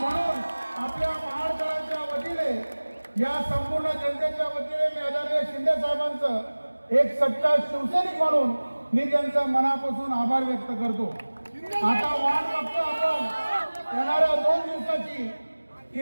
म्हणून आपल्या महाराष्ट्राच्या वतीने, या संपूर्ण जनतेच्या वतीने मी आदरणीय शिंदे साहेबांचं एक सच्चा शिवसैनिक म्हणून मी त्यांचा मनापासून आभार व्यक्त करतो. आता वाट बघतो आपण येणाऱ्या 2 दिवसाची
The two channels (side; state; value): both; inverted; correlation -1.00